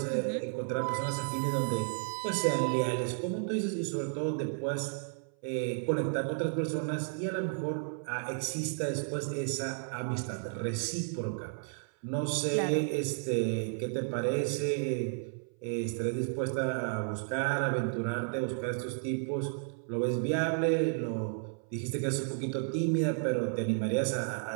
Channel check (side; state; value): left; silent; 56 dB below the other